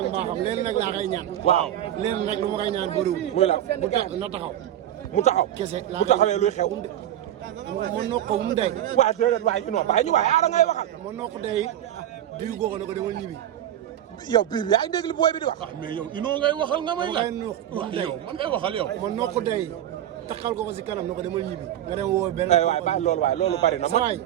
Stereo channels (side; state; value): left; quieter; 11.8 dB